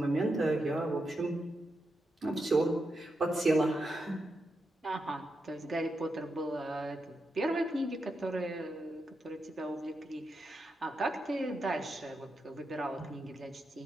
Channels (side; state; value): both; normal; correlation 0.86